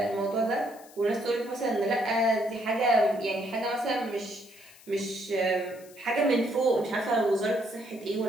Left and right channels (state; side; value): noise; left; hiss, 23 dB below the sound